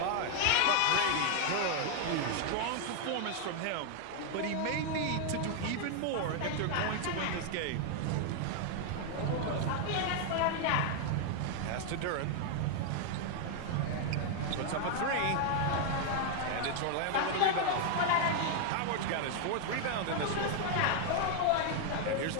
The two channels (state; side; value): different; both; correlation 0.00